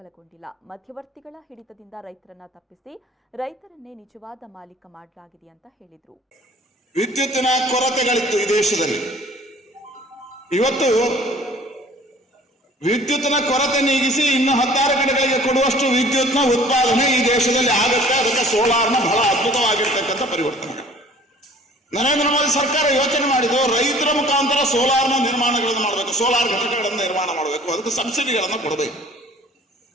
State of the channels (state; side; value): normal; both; correlation 0.51